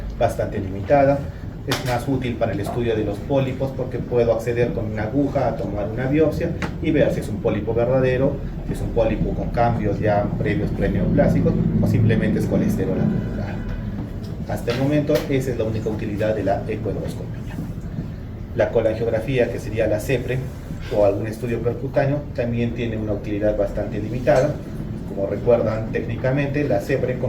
bastante limitada. Es más útil para el estudio de los pólipos porque puedo acceder con una aguja a tomar una biopsia y ver si es un pólipo verdadero, si es un pólipo con cambios ya previos preneoplásicos o simplemente es colesterol acumulado. Hasta el momento esa es la única utilidad de la ecoendoscopía. La colangiografía, que sería la CEPRE o algún estudio percutáneo, también tiene una utilidad bastante limitada. Como recuerdan técnicamente, la CEPRE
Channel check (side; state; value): both; identical; correlation 1.00